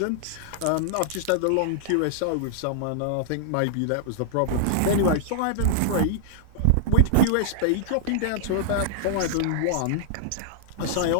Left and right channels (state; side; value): different; both; correlation -0.01